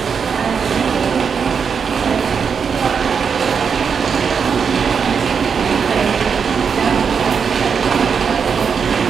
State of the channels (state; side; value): quieter; left; 6.3 dB